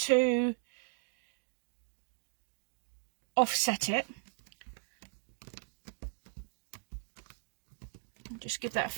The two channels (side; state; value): left; silent; 53 dB below the other